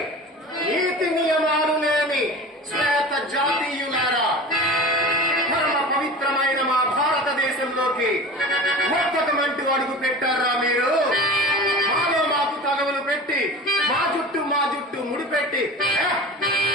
నీతి నియమాలు లేని శ్వేత జాతీయులారా, పరమ పవిత్రమైన మా భారతదేశంలోకి మొత్తమంటూ అడుగు పెట్టారా మీరు? మాలో మాకు తగవులు పెట్టి మా జుట్టు ముడిపెట్టి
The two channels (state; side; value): normal; both; correlation 0.35